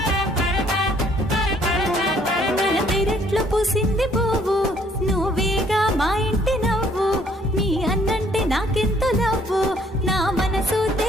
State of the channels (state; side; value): normal; both; correlation 0.62